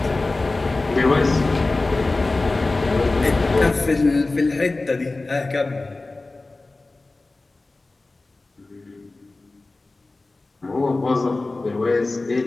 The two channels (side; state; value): right; quieter; 3.2 dB